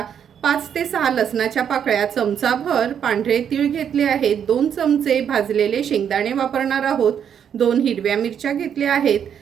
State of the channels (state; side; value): quieter; left; 8.4 dB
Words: 5 ते 6 लसणाच्या पाकळ्या, चमचाभर पांढरे तीळ घेतले आहेत. 2 चमचे भाजलेले शेंगदाणे वापरणार आहोत. 2 हिरव्या मिरच्या घेतल्या आहेत.